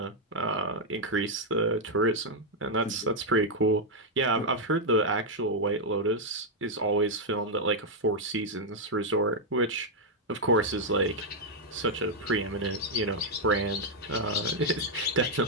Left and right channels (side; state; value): both; normal; correlation -0.02